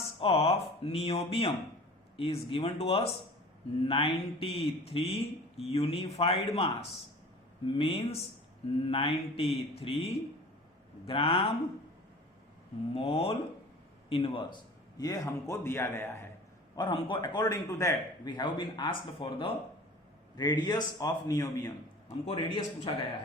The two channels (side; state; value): both; normal; correlation 0.42